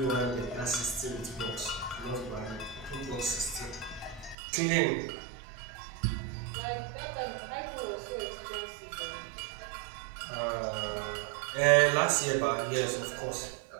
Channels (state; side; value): drops out; left; at 4.4 s